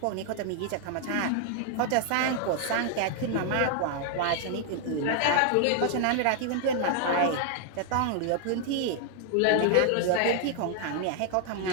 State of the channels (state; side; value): different; both; correlation 0.00